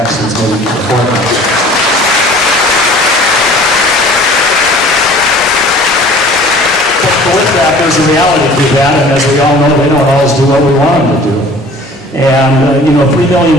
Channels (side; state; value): both; normal; correlation 0.48